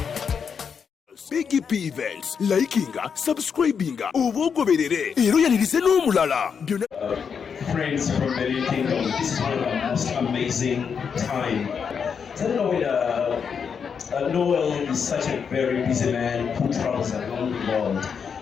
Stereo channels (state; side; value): quieter; right; 6.6 dB